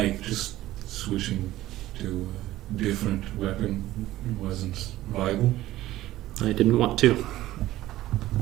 just switching to a different weapon wasn't viable? I didn't want to.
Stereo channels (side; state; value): left; quieter; 15.4 dB